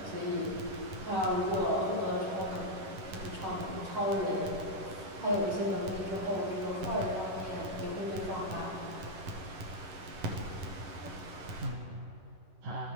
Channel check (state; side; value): late; left; 11 ms